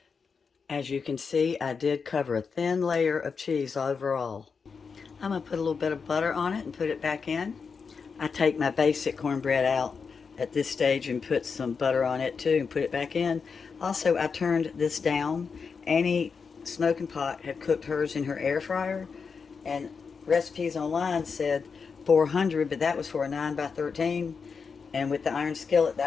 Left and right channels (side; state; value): right; quieter; 5.5 dB